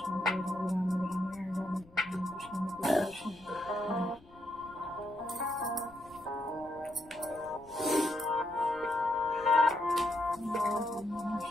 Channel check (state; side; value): noise; left; rumble, 25 dB below the sound